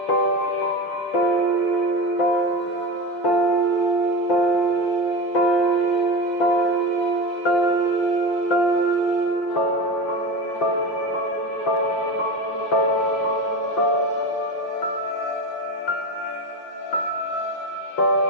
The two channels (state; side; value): late; right; 5.6 ms